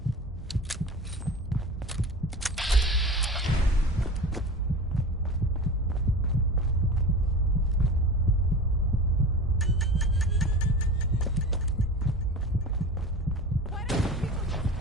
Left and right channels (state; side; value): normal; both; correlation 0.33